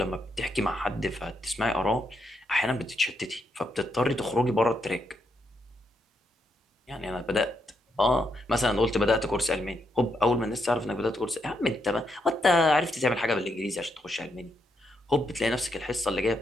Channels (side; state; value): both; normal; correlation 0.79